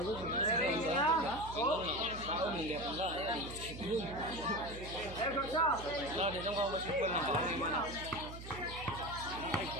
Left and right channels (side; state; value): right; noise; hum, 11 dB below the sound